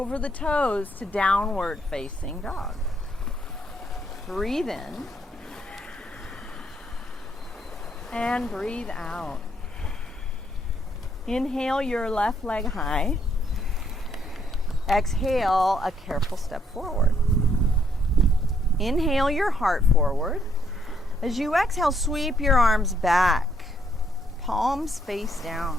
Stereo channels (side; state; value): both; normal; correlation 0.70